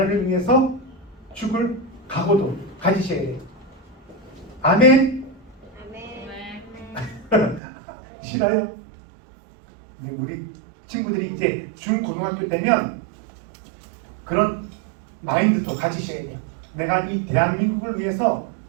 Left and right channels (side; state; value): left; drops out; at 7.6 s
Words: 위해서 죽을 각오도 가지셔야 돼요. 아멘? 싫어요? 근데 우리 친구들이 이제 중고등학교 때면 그런 마인드도 가지셔야 돼요. 내가 이 대한민국을 위해서